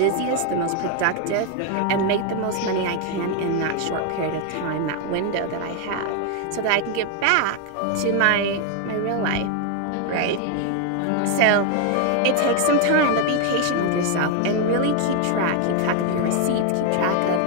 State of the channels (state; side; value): different; both; correlation 0.01